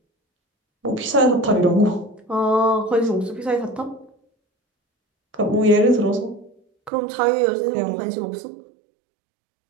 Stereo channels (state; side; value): drops out; left; at 6.9 s